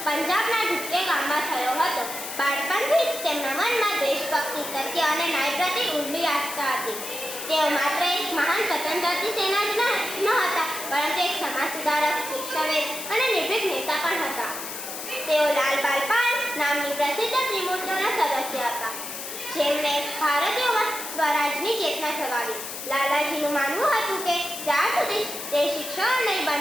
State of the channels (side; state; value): left; noise; hiss, 8 dB below the sound